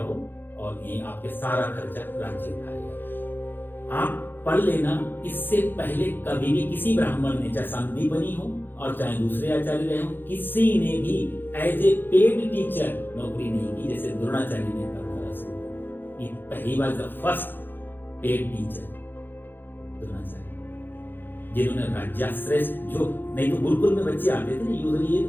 और ये आपके सारा खर्चा राज्य उठाएगा। आप पढ़ लेना, इससे पहले कभी भी किसी ब्राह्मण ने, चाहे संदीपनी हो और चाहे दूसरे आचार्य रहे हो, किसी ने भी एज ए पेड टीचर नौकरी नहीं की जैसे द्रोणाचार्य ने परंपरा शुरू की। ये पहली बार the first paid teacher Dronacharya, जिन्होंने राज्याश्रय, जो नहीं तो गुरुकुल में बच्चे आते थे ना, यूजुअली ये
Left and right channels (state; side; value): late; right; 0.096 ms